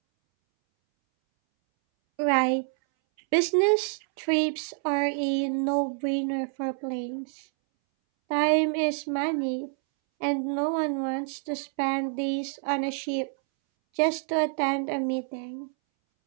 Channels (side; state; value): left; silent; 60 dB below the other